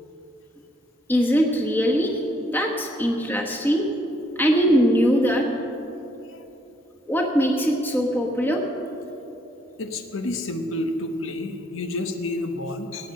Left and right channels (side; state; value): both; normal; correlation 0.70